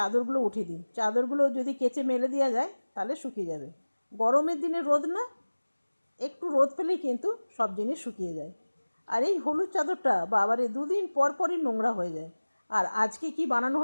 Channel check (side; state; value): both; inverted; correlation -1.00